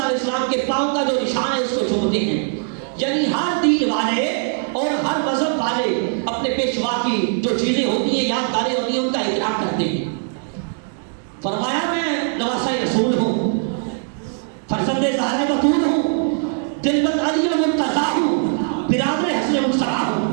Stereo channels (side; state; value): left; silent; 57 dB below the other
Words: علیہ السلام کے پاؤں کا جو نشان ہے اس کو چومتے ہیں، یعنی ہر دین والے اور ہر مذہب والے اپنے پیشوا کی جو چیزیں ہوتی ہیں، یادگاریں ہوتی ہیں، ان کا احترام کرتے ہیں۔ فرمایا میں نواسہ رسول ہوں، فرزند زہرہ بتول ہوں، دلبند علی المرتضیٰ ہوں، برادر حسن مصطفیٰ